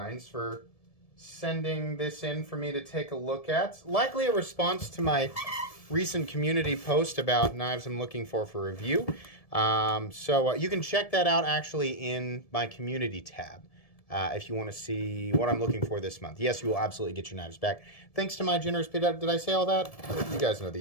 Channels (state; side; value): late; right; 1.7 ms